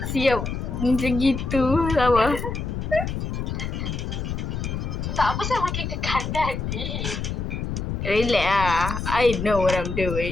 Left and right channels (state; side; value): noise; left; rumble, 3 dB below the sound